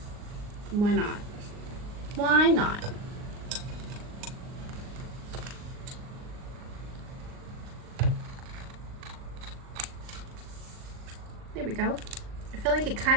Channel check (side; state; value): left; late; 39 ms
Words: Why not? Why not? There we go. I feel like it